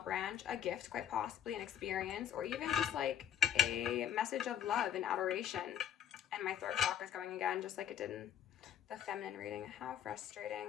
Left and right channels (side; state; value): right; quieter; 9.7 dB